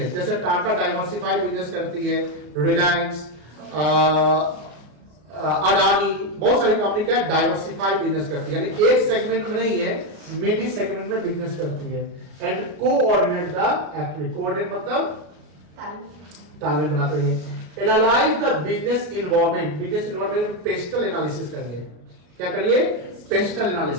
जैसे टाटा डाइवर्सिफाइड बिजनेस करती है, रिलायंस, अडानी, बहुत सारी कंपनी क्या है, डाइवर्सिफाइड बिजनेस करती है, यानी एक सेगमेंट में नहीं है, मेनी सेगमेंट में बिजनेस करती है। And coordinate the activity, coordinate मतलब तालमेल बनाते हैं। Analyse the business environment, business environment pastel analysis करिए। क्या करिए, पेस्टल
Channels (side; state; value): left; late; 33 ms